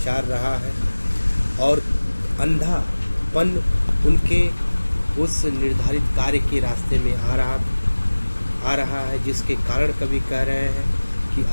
रहा है। और अंधापन उनके उस निर्धारित कार्य के रास्ते में आ रहा है, जिसके कारण कवि कह रहे हैं कि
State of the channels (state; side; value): inverted; both; correlation -1.00